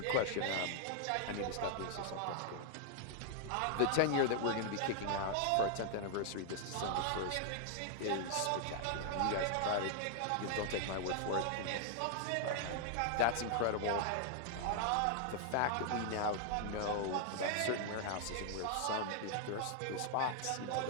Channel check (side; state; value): both; different; correlation 0.00